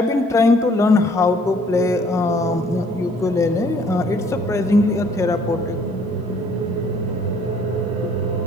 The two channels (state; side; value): normal; both; correlation 0.60